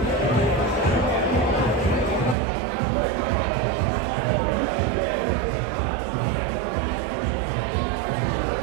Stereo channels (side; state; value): left; drops out; at 2.4 s